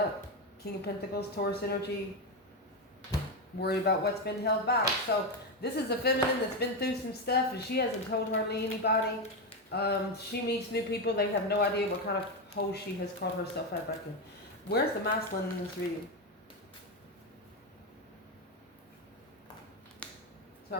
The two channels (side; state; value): both; normal; correlation 0.10